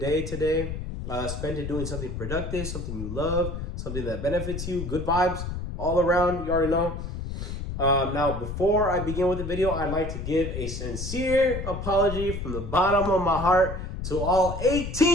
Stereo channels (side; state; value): left; noise; rumble, 6 dB below the sound